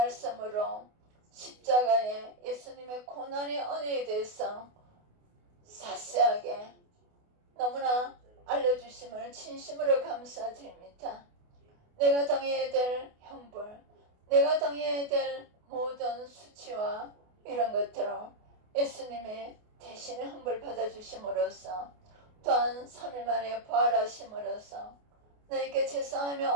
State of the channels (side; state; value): left; late; 28 ms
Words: 십자가에 예수님의 고난의 은혜에 대해서 자세하게 너무나 알려주심을 진심으로 감사드립니다. 내가 당해야 될 형벌, 내가 당해야 될 모든 수치와 이런 것들을 예수님의 대신에 형벌 받아주심으로써, 또한 3일 만에 부활하심으로써 나에게